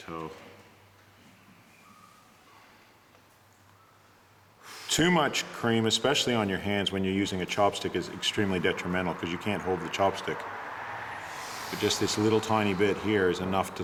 Too much cream, especially on your hands when you're using a chopstick, is extremely detrimental because you can't hold the chopstick. But just this little tiny bit here is enough to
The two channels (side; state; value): both; identical; correlation 1.00